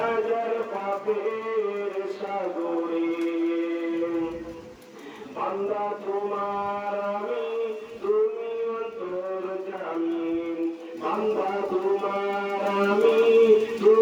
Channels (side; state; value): both; identical; correlation 1.00